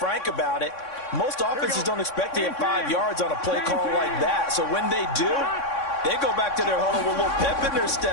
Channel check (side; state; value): right; late; 3.6 ms